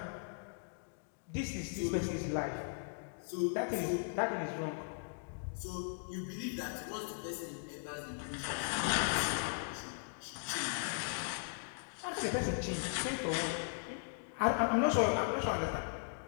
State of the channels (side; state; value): right; silent; digital silence